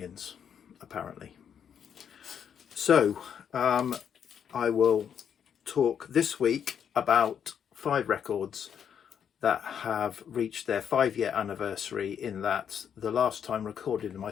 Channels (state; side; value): quieter; right; 8.1 dB